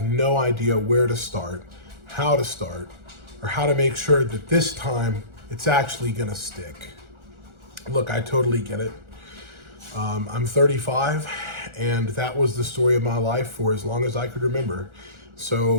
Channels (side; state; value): left; late; 1.4 ms